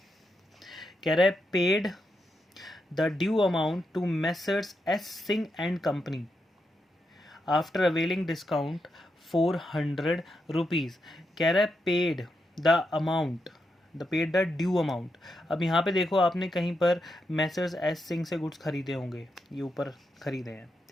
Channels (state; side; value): normal; both; correlation 0.84